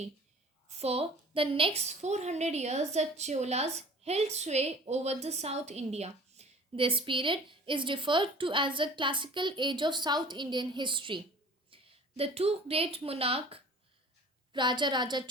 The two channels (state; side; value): normal; both; correlation 0.45